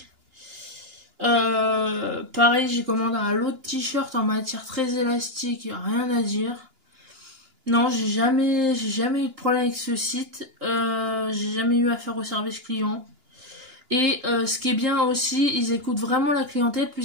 Pareil, j'ai commandé un lot de t-shirts en matière très élastique, rien à dire. Non, j'ai jamais eu de problème avec ce site. J'ai jamais eu affaire au service client. Et ce qui est bien aussi, ils écoutent vraiment la clientèle,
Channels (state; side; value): late; left; 2.9 ms